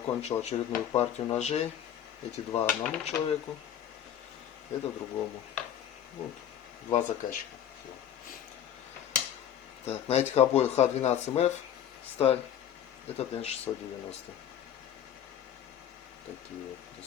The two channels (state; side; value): quieter; right; 9.9 dB